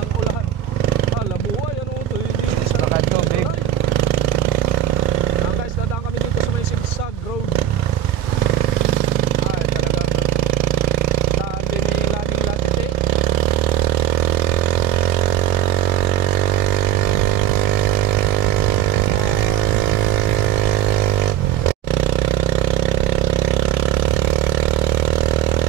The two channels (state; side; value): quieter; left; 11.9 dB